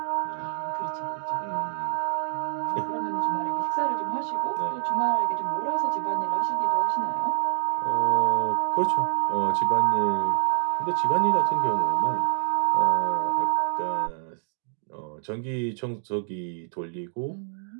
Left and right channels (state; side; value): silent; left; digital silence